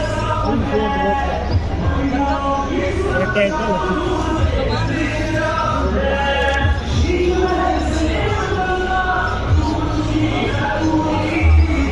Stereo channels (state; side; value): identical; both; correlation 1.00